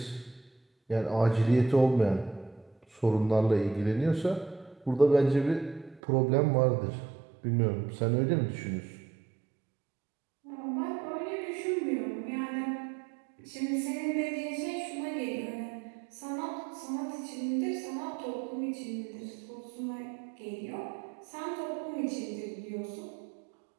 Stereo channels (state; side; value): drops out; left; at 6.0 s